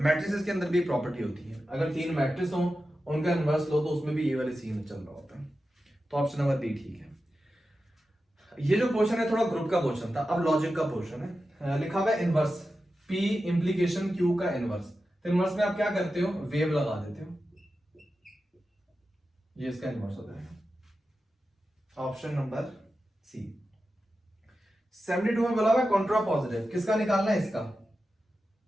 के अंदर भी प्रॉपर्टी होती है, अगर 3 मैट्रिक्स हो उनका इनवर्स लो तो उसमें भी ये वाले सीन चल रहा होता है। तो ऑप्शन नंबर बी ठीक है। ये जो क्वेश्चन है थोड़ा ग्रुप का क्वेश्चन था, अब लॉजिक का क्वेश्चन है। लिखा हुआ है इनवर्स P इंप्लीकेशन Q का इनवर्स। तो इनवर्स में आप क्या करते हो, वेव लगा देते हो, ये इसका इनवर्स होता है। ऑप्शन नंबर सी। 72 में बोला हुआ है कॉन्ट्रा पॉजिटिव, किसका निकालना है, इसका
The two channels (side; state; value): both; normal; correlation 0.92